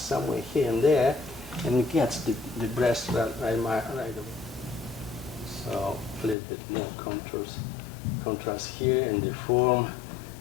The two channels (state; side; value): drops out; right; at 6.4 s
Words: here and there, and it gets the breast right away. So a little bit more contrast here in the form,